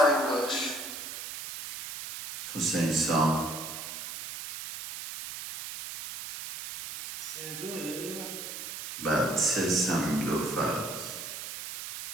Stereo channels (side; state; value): right; noise; hiss, 8 dB below the sound